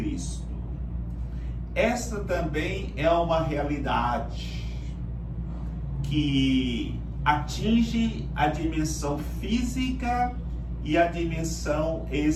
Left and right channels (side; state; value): both; identical; correlation 1.00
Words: Esta também é uma realidade que atinge a dimensão física e a dimensão